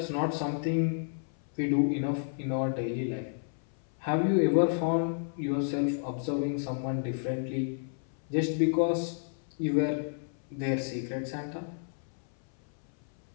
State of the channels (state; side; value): silent; right; 57 dB below the other